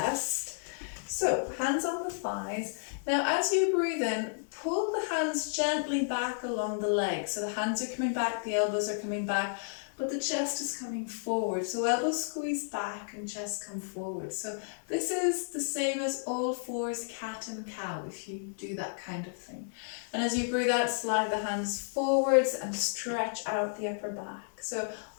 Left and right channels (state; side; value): silent; right; 56 dB below the other